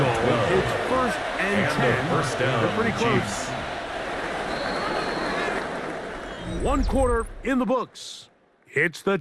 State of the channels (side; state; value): both; identical; correlation 1.00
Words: It's 1st and 10. First down. They're pretty close. Chiefs. 1 quarter in the books. It's the